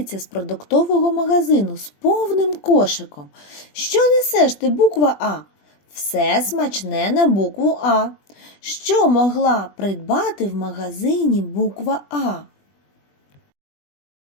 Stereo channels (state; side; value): late; right; 20 ms